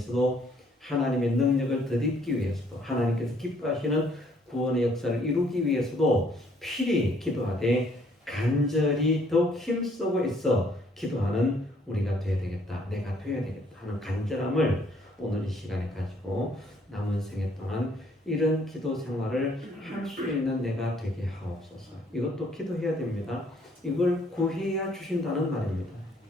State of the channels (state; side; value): normal; both; correlation 0.64